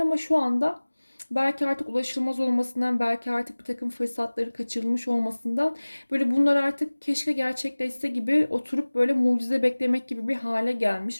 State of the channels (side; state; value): both; inverted; correlation -1.00